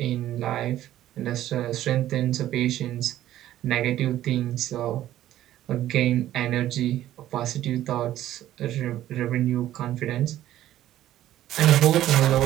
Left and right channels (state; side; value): quieter; left; 13.2 dB